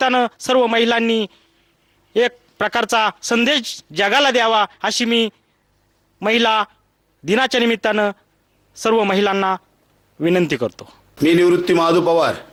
सर्व महिलांनी एक प्रकारचा संदेश जगाला द्यावा अशी मी महिला दिनाच्या निमित्तानं सर्व महिलांना विनंती करतो. मी निवृत्ती महादू पवार,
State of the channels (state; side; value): identical; both; correlation 1.00